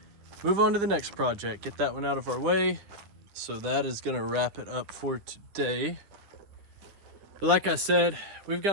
move on to the next project. Get that one out of our way. So that is going to wrap it up for today. But like I said, we've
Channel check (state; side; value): late; left; 10 ms